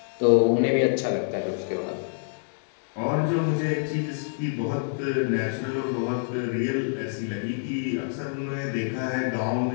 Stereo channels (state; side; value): silent; right; digital silence